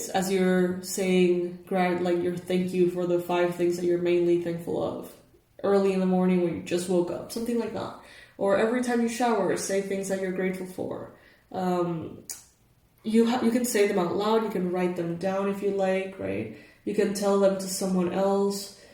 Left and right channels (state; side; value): identical; both; correlation 1.00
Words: as you're saying, your thank you for the 5 things that you're mainly thankful of. Early in the morning when you just woke up, something like that. Or every time you shower, say things that you're grateful for. You can say them out loud, you can write them down if you like, right? You can tell them to someone else.